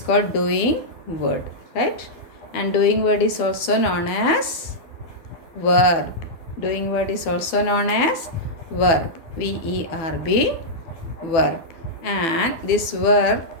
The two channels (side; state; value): right; late; 12 ms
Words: doing word, right? And doing word is also known as verb. Doing word is also known as verb. VERB, verb. And this verb,